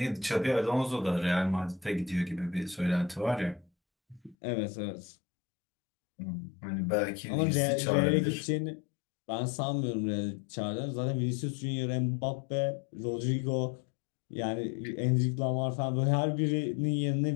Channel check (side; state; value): right; drops out; at 4.4 s